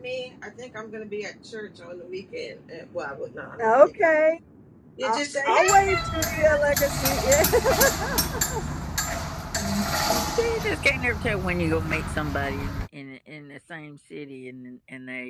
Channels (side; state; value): both; identical; correlation 1.00